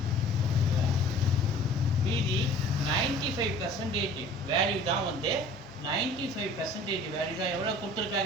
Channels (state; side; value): normal; both; correlation 0.47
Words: மீதி 95% வேல்யூ தான் வந்து 95% வேல்யூ தான் எவ்வளோ